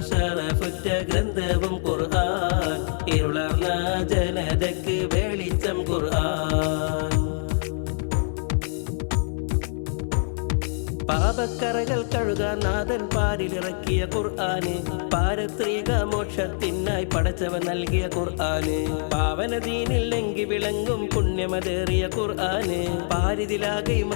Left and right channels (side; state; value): right; silent; 62 dB below the other